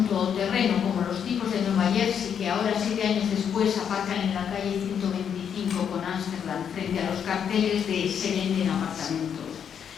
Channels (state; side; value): quieter; right; 8.0 dB